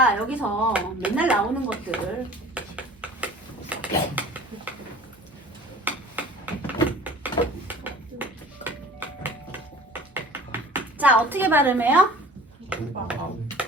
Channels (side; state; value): both; normal; correlation 0.44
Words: 여기서 맨날 나오는 것들 자 어떻게 발음해요?